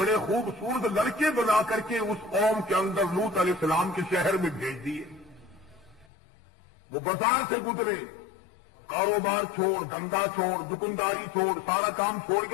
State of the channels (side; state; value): right; drops out; at 6.1 s